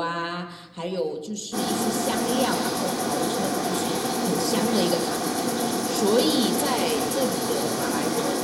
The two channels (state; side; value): identical; both; correlation 1.00